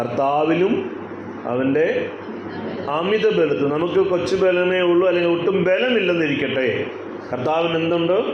അവൻ്റെ അമിത ബലത്തിൽ. നമുക്ക് കൊച്ചു ബലമേ ഉള്ളൂ, അല്ലെങ്കിൽ ഒട്ടും ബലമില്ലെന്നിരിക്കട്ടെ, കർത്താവിന് എന്തുണ്ട്?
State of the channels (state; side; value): identical; both; correlation 1.00